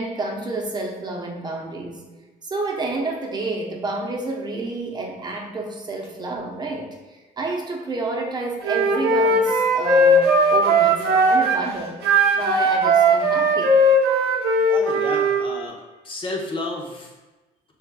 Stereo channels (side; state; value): both; normal; correlation 0.41